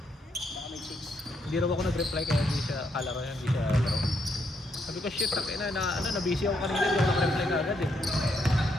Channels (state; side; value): normal; both; correlation 0.76